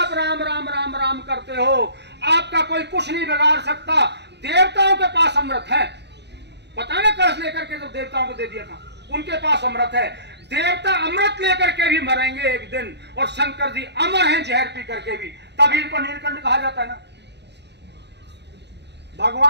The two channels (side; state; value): left; late; 0.50 ms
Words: राम राम राम राम करते हो, आपका कोई कुछ नहीं बिगाड़ सकता। देवताओं के पास अमृत है, पता है ना, कलश लेकर के जो देवताओं को दे दिया था, उनके पास अमृत है। देवता अमृत लेकर के भी मरेंगे एक दिन, और शंकर जी अमर हैं जहर पी करके भी, तभी इनको नीलकंठ कहा जाता है ना।